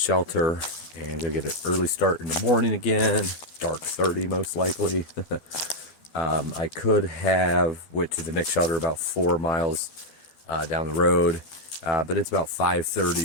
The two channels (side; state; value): right; late; 12 ms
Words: and gonna get an early start in the morning again. Dark 30 most likely. I could have went to the next shelter about 4 miles down the road, but it's about